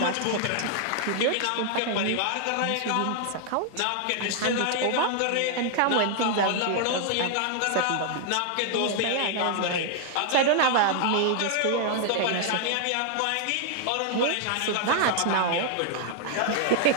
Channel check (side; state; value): both; different; correlation 0.00